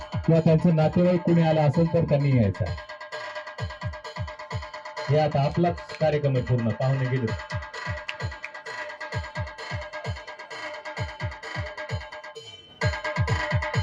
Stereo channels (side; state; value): both; identical; correlation 1.00